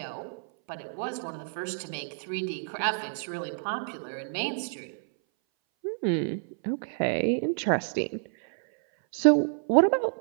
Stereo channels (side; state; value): left; silent; 59 dB below the other